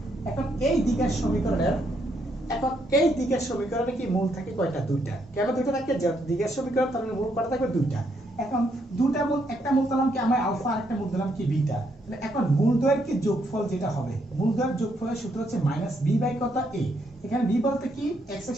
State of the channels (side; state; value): both; normal; correlation 0.75